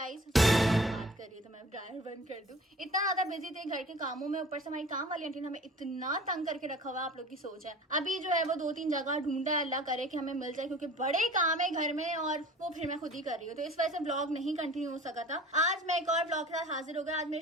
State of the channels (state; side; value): normal; both; correlation 0.44